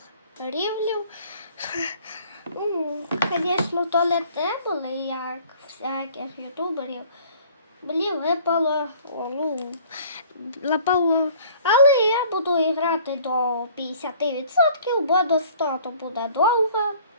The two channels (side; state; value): both; inverted; correlation -0.53